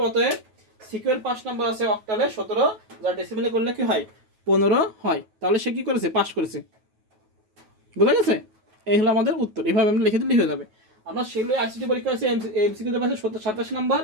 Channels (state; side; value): late; left; 9.3 ms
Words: অতএব সিকিউর 5 নাম্বার আছে অক্টালে 17, যা ডেসিমেলে করলে কি হয়? 15 হয়। তাহলে সে কি করেছে? পাস করেছে। বুঝা গেছে? এই হলো আমাদের উত্তর। এভাবে আমরা লিখে দিলেই হয়ে যাবে। আমরা সেগুলো আইসিটি পরীক্ষা আছে, এমসিকিউতে পাচ্ছে 87 নাম্বার,